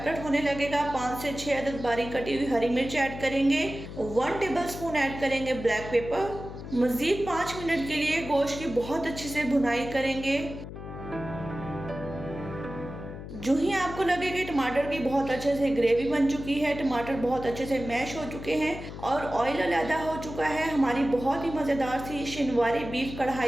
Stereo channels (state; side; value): noise; left; hum, 11 dB below the sound